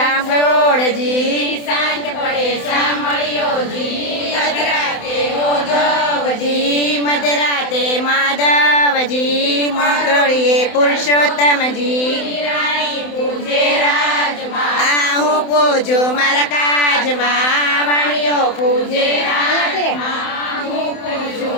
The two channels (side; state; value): right; late; 28 ms